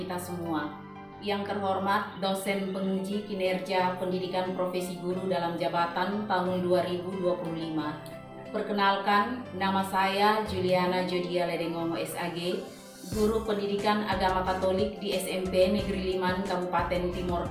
semua. Yang terhormat dosen penguji kinerja pendidikan profesi guru dalam jabatan tahun 2025. Perkenalkan, nama saya Juliana Jodia Ledengongo SAG, guru pendidikan agama Katolik di SMP Negeri Liman, Kabupaten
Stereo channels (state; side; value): identical; both; correlation 1.00